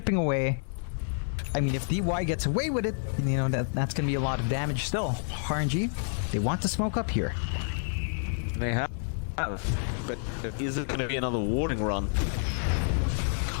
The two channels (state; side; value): silent; right; 56 dB below the other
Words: away. I mean, if DY gets away with it, you know, that's going to be a lot of damage still. RNG, they want to smoke up here. They have, but is it going to be another warding run?